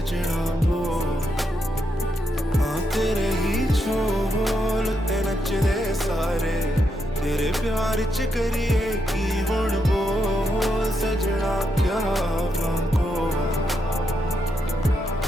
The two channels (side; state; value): both; normal; correlation 0.81